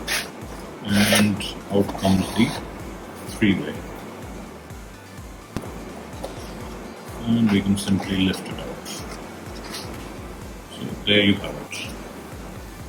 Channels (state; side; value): identical; both; correlation 1.00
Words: And out comes the three-way. And we can simply lift it out. So there you have it.